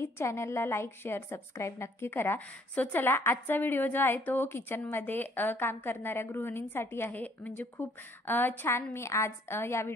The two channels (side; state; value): both; normal; correlation 0.63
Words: चॅनलला लाईक शेअर सबस्क्राईब नक्की करा। सो चला, आजचा व्हिडिओ जो आहे तो किचनमध्ये काम करणाऱ्या गृहिणींसाठी आहे। म्हणजे खूप छान मी आज या